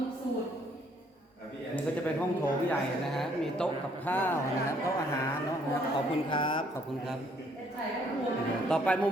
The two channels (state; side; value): normal; both; correlation 0.66